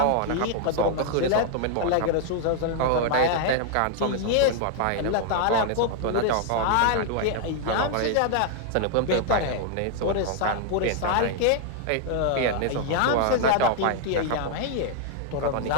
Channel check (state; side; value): different; both; correlation 0.00